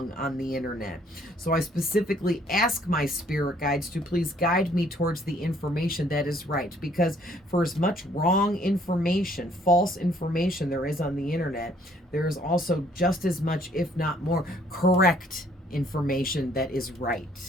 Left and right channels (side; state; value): both; normal; correlation 0.63